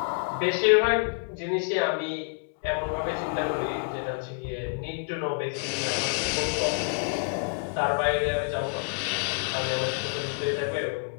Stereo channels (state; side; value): silent; right; 55 dB below the other